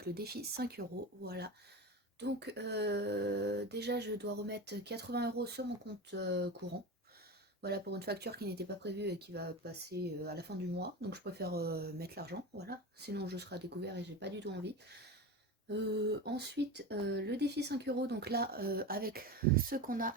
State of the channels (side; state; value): both; normal; correlation 0.25